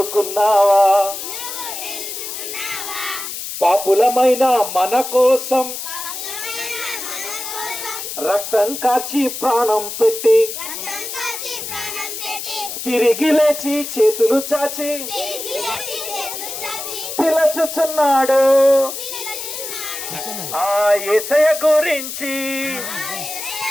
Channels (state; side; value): noise; left; hiss, 7 dB below the sound